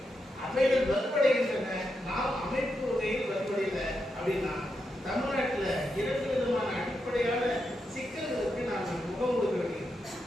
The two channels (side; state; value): both; normal; correlation 0.85